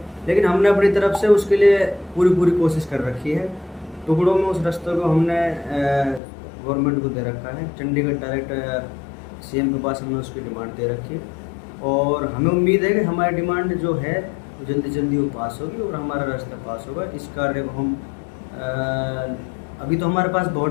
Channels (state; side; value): drops out; right; at 6.2 s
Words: लेकिन हमने अपनी तरफ से उसके लिए पूरी कोशिश कर रखी है। टुकड़ों में उस रास्ते को हमने गवर्नमेंट को दे रखा है। चंडीगढ़ डायरेक्ट सीएम के पास हमने उसकी डिमांड दे रखी है और हमें उम्मीद है कि हमारी डिमांड जो है वो जल्दी वो पास होगी और हमारा रास्ता पास होगा। इस कार्य को हम अभी तो हमारे पास